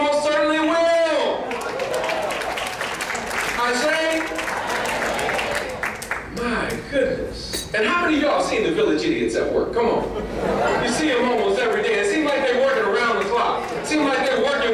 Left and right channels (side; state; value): both; identical; correlation 1.00